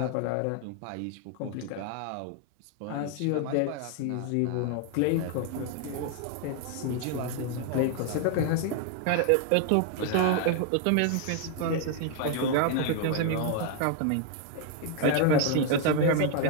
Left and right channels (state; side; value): different; both; correlation 0.00